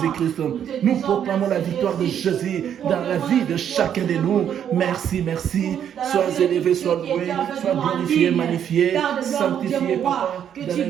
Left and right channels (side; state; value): left; quieter; 9.2 dB